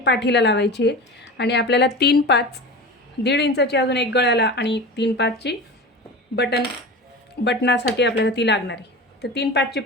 लावायची आहे आणि आपल्याला 3-5 1.5 इंचाची अजून एक गळ्याला आणि 3-5ची बटनासाठी आपल्याला ती लागणार आहे. तर 3-5ची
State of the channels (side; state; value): both; normal; correlation 0.31